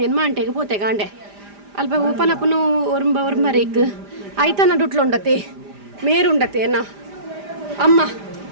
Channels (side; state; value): left; late; 5.0 ms